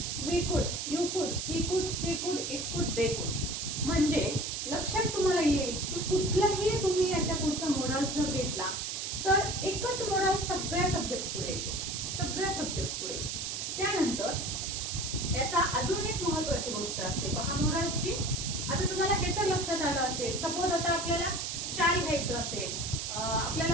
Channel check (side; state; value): right; noise; hiss, 3 dB below the sound